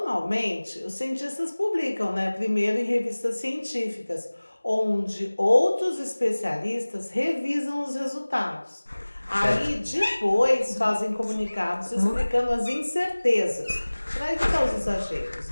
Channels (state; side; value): inverted; both; correlation -1.00